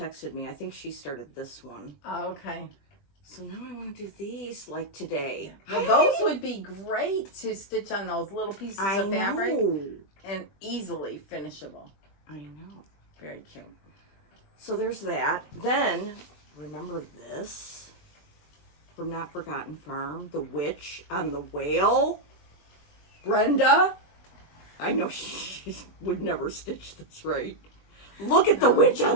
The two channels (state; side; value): late; right; 21 ms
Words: me. I think she started this one. Oh, okay. So now I want to do these like today. Well, those would be great to stitch on those little pieces of fabric and easily finishable. I know. Very cute. So there's that. Then, remember this from Not Forgotten Farm? The witch on the whale? Brenda? I know she would never stitch this right. Look at the witch